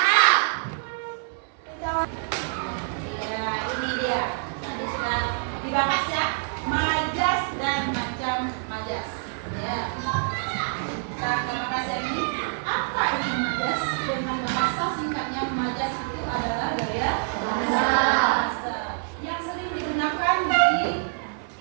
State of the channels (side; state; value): left; silent; 60 dB below the other